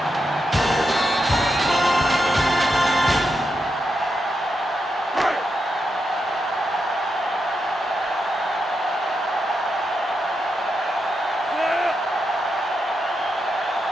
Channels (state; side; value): normal; both; correlation 0.85